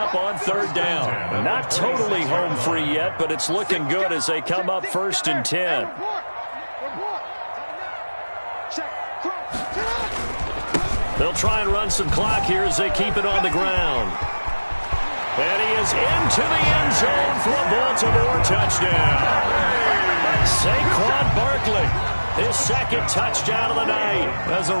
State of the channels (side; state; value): both; inverted; correlation -1.00